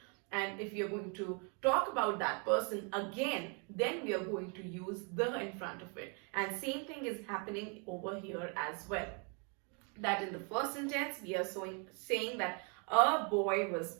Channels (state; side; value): quieter; left; 36.9 dB